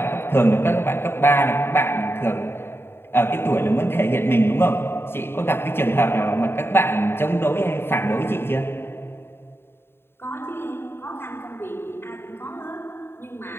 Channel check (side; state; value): right; late; 0.11 ms